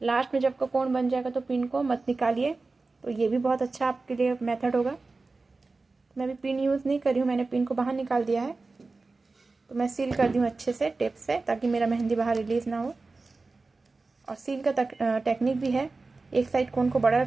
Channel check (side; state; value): left; quieter; 3.7 dB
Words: में जब का कोन बन जाएगा तो पिन को मत निकालिए। तो ये भी बहुत अच्छा आपके लिए मेथड होगा। मैं भी पिन यूज़ नहीं कर रही हूँ, मैंने पिन को बाहर निकाल दिया है। तो मैं सील कर दी हूँ अच्छे से टेप से, ताकि मेरा मेहंदी बाहर रिलीज़ ना हो। और सील का टेक्निक भी है, एक साइड कोन को बड़ा